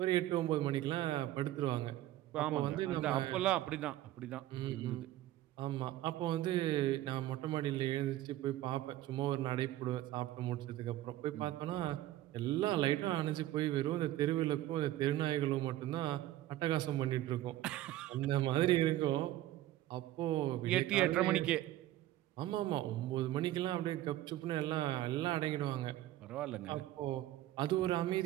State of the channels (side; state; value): left; quieter; 14.5 dB